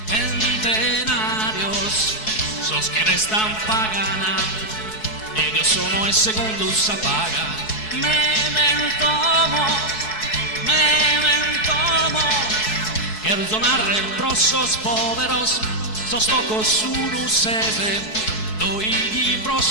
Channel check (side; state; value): right; late; 4.7 ms